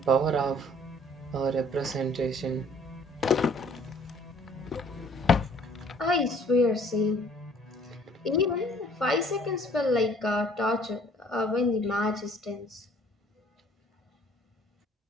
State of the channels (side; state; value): both; normal; correlation 0.57